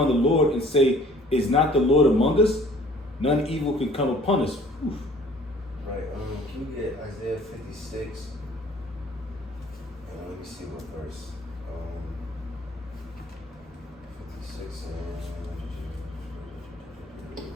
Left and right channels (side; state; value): both; normal; correlation 0.53